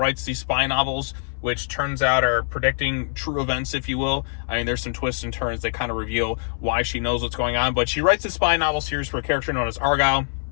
these spy novels, which turns out are predicting true events, if you will. I mean, there's some twists and turns that kind of reveal why she knows what's going on, but she writes a spy novel series for a character known as Argylle.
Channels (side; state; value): right; silent; 63 dB below the other